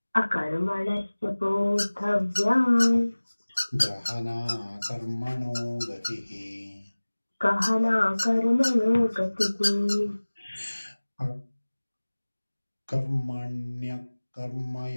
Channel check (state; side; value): inverted; both; correlation -1.00